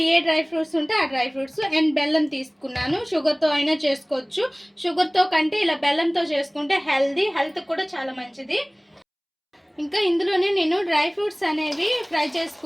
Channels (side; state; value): both; identical; correlation 1.00